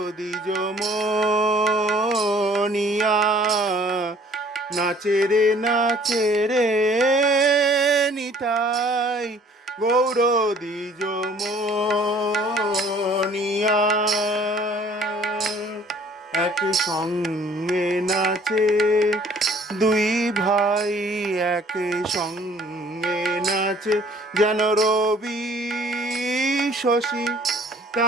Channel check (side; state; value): both; normal; correlation 0.55